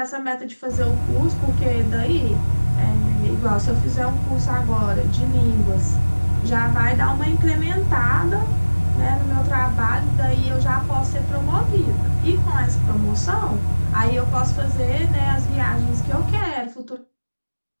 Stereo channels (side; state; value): both; inverted; correlation -1.00